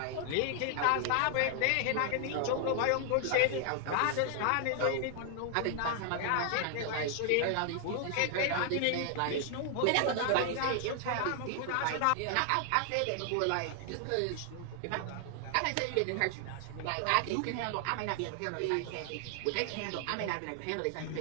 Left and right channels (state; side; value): different; both; correlation 0.00